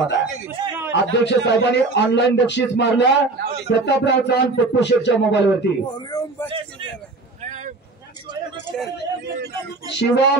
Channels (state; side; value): quieter; left; 3.4 dB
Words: आहे. अध्यक्ष साहेबांनी ऑनलाईन बक्षीस मारलं प्रतापराव चव्हाण पप्पू शेठच्या मोबाईलवरती.